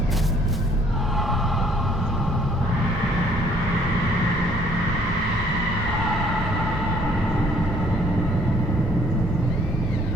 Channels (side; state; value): both; normal; correlation 0.60